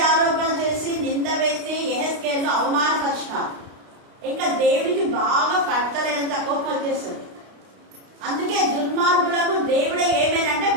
చేసి నింద వేసి యెహెజ్కేలు అవమానపరిచినారు. ఇంకా దేవుడికి బాగా పట్టలేనంత కోపం వచ్చేస్తుంది. అందుకే దుర్మార్గులకు దేవుడే ఏమేనంటే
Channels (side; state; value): left; late; 32 ms